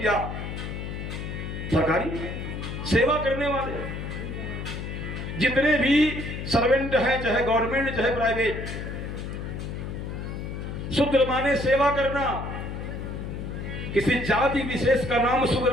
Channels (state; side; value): noise; left; hum, 6 dB below the sound